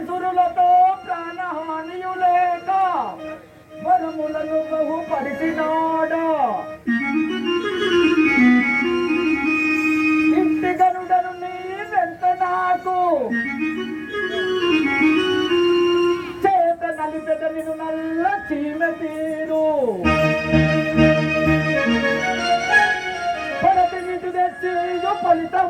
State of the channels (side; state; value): both; identical; correlation 1.00